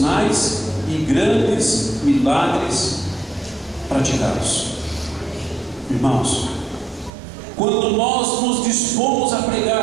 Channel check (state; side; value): drops out; left; at 7.1 s